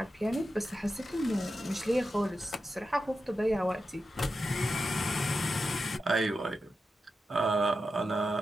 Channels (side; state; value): both; normal; correlation 0.89